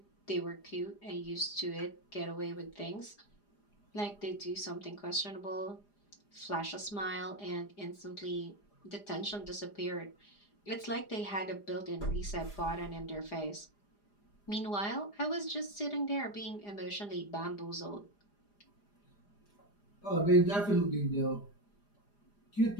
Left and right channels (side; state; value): right; late; 4.9 ms